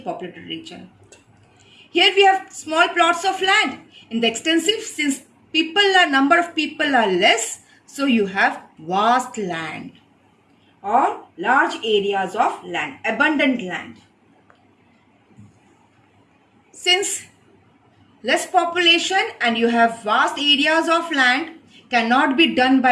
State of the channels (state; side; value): identical; both; correlation 1.00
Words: region. Here we have small plots of land. In the extensive, since number of people are less, so you have vast land or large areas of land, abundant land. Since less population and you have vast areas of land cannot be done